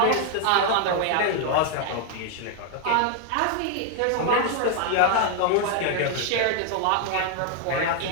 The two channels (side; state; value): both; different; correlation 0.00